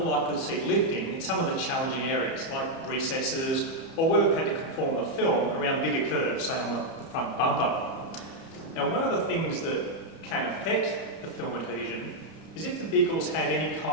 likely to see lifting in some of the challenging areas, like recesses, or where we've had to conform the film around bigger curves, say on the front bumper. Now, one of the things that can affect the film adhesion is if the vehicles have any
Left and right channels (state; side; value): late; right; 30 ms